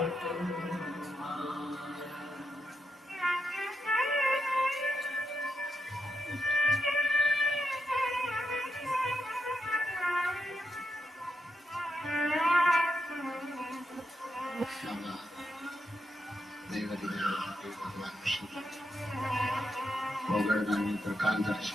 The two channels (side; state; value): both; normal; correlation 0.83